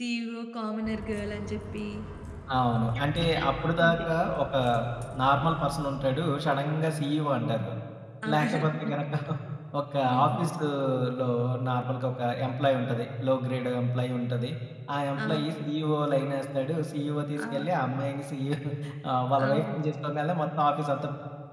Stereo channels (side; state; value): both; identical; correlation 1.00